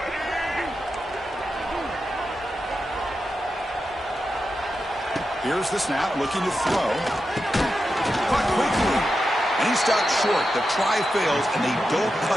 Here's the snap, looking to throw. Caught quickly. And he stopped short. The try fails, and they don't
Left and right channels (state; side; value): normal; both; correlation 0.89